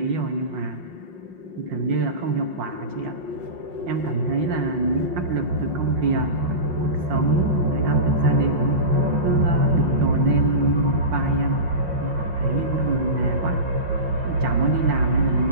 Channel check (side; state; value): left; late; 5.6 ms